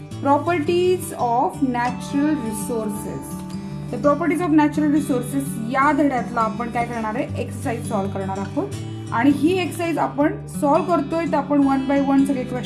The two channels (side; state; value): both; identical; correlation 1.00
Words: प्रॉपर्टीज ऑफ नॅचरल रिसोर्सेस. तर प्रॉपर्टीज ऑफ नॅचरल रिसोर्सेस या धड्यातला आपण काय करणार आहे, एक्सरसाइज सॉल्व करणार आहोत. आणि ही एक्सरसाइज आपण सॉल्व करतोय तर आपण वन बाय वन सगळे